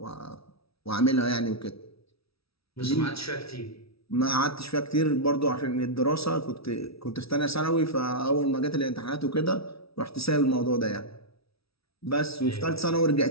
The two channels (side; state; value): right; late; 0.76 ms